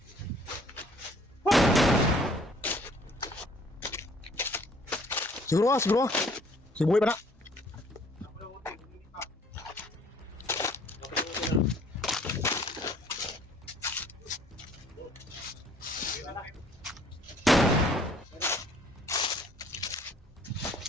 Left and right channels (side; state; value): both; normal; correlation 0.58